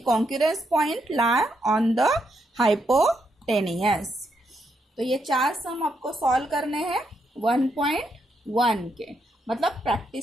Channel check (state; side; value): normal; both; correlation 0.79